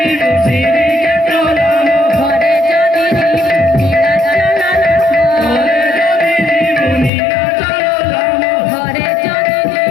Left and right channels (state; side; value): drops out; right; at 7.1 s